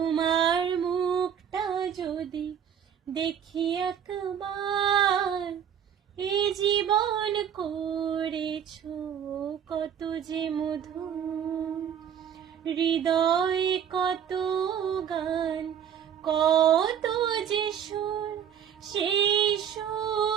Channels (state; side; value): quieter; left; 8.8 dB